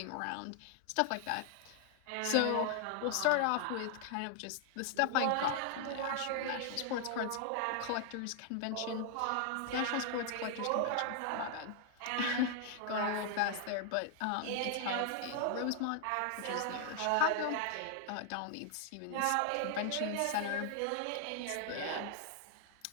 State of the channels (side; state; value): both; different; correlation 0.00